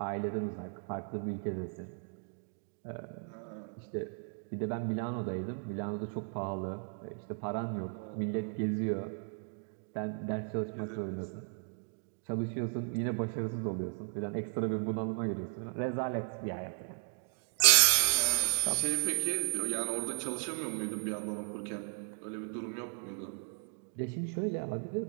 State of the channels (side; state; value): left; silent; 54 dB below the other